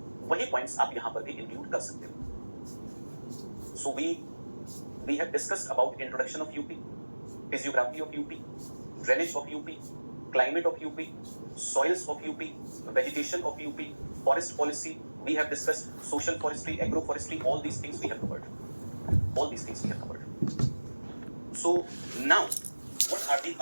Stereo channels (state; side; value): inverted; both; correlation -1.00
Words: वही points आप यहाँ पर भी इंक्लूड कर सकते हो. So we have discussed about introduction of UP, physiography of UP, drainage of UP, climate of UP, soils of UP, vegetation of UP, forest policy. We have discussed social forestry, agroforestry, all these things we have covered. All these things we have covered. So now, what are the